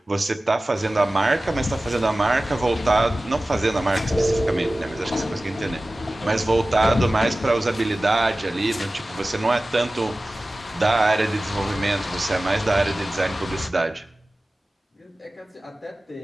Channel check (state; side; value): normal; both; correlation 0.97